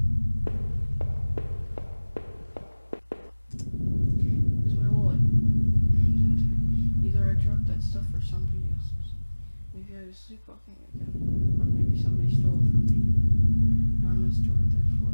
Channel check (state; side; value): inverted; both; correlation -1.00